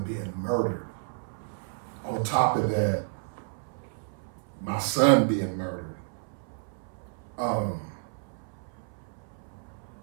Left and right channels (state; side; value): silent; left; 57 dB below the other